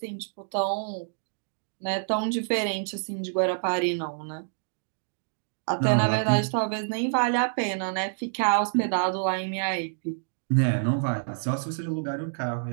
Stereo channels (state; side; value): silent; left; digital silence